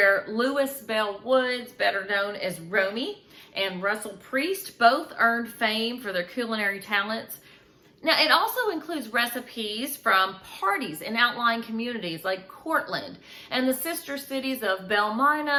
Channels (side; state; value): both; identical; correlation 1.00